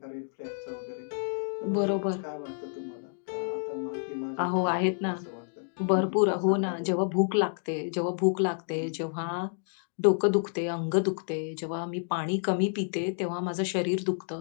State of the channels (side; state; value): right; silent; digital silence